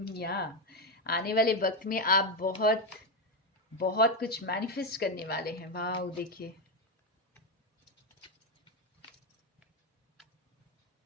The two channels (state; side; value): normal; both; correlation 0.08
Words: आने वाले वक्त में आप बहुत बहुत कुछ मैनिफेस्ट करने वाले हैं। वाह, देखिए